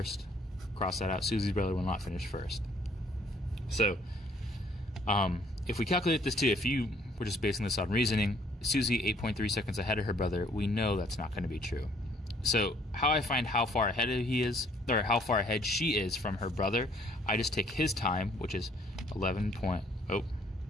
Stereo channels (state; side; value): normal; both; correlation 0.62